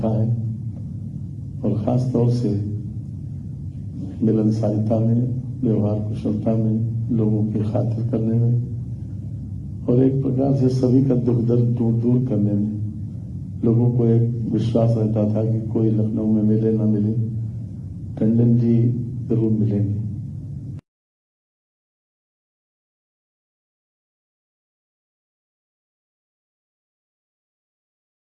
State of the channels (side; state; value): both; identical; correlation 1.00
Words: है और ख़ास तौर से मिलनसारिता में, व्यवहार कुशलता में, लोगों की खातिर करने में और एक प्रकार से सभी का दुख दर्द दूर करने में। लोगों को एक विश्वास रहता था कि कोई लखनऊ में मिले ना मिले, टंडन जी जरूर मिलेंगे।